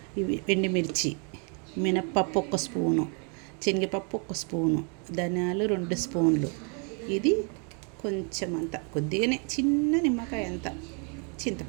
ఇవి ఎండుమిర్చి, మినప్పప్పు 1 స్పూను, శనగపప్పు 1 స్పూను, ధనియాలు 2 స్పూన్లు. ఇది కొంచెం అంత కొద్దిగానే చిన్న నిమ్మకాయ అంత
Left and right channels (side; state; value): left; quieter; 37.9 dB